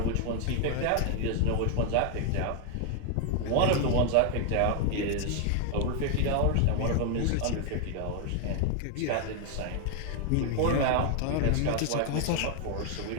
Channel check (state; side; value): different; both; correlation 0.00